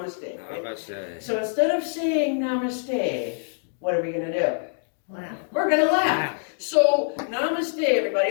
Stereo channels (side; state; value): right; silent; digital silence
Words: Right? Namaste. So instead of saying namaste, what are we going to do? Laugh. We're going to laugh. So namaste,